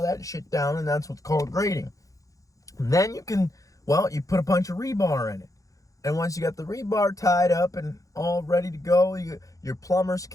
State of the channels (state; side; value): late; right; 0.16 ms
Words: that shit down, and that's what's called grading. And then you put a bunch of rebar in it. And once you got the rebar tied up and all ready to go, your plumbers